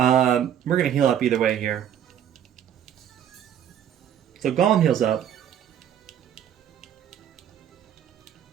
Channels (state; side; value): quieter; left; 9.6 dB